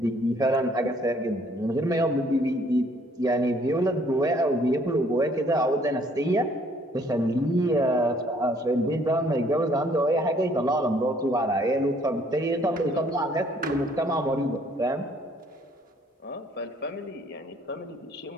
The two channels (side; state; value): both; normal; correlation 0.62